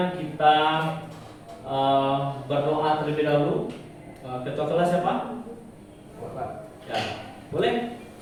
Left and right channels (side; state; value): both; identical; correlation 1.00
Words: kita berdoa terlebih dahulu. Ketua kelas siapa? Ya, boleh?